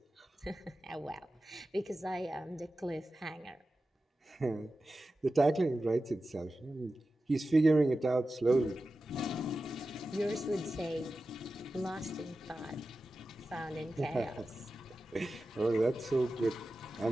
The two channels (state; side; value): normal; both; correlation 0.93